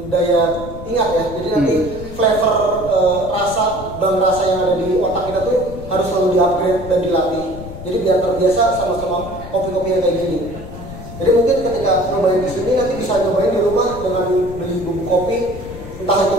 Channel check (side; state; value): left; noise; rumble, 12 dB below the sound